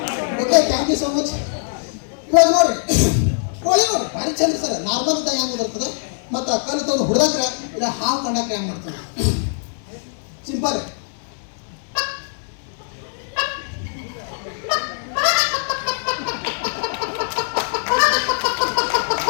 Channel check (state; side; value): silent; right; 63 dB below the other